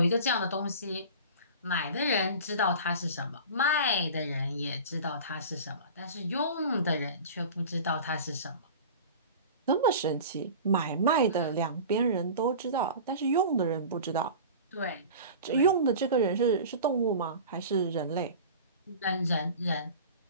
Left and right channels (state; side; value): inverted; both; correlation -0.36